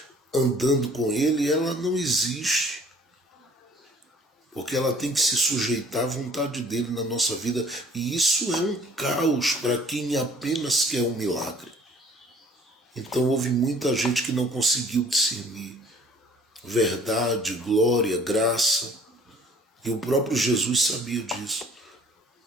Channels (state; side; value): normal; both; correlation 0.53